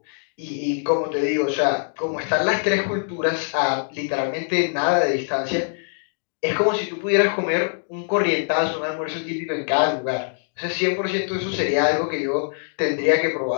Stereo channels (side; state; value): right; silent; digital silence